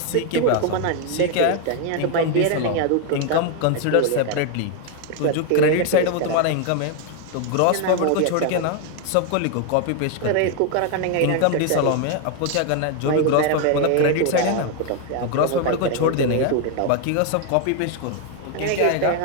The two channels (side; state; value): both; different; correlation 0.01